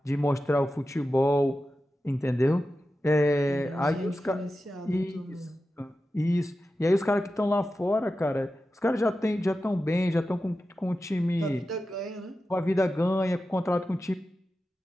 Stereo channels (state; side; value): normal; both; correlation 0.92